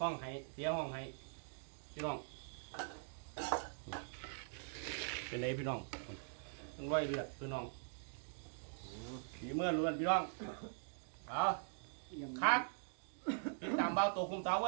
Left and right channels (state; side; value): silent; left; digital silence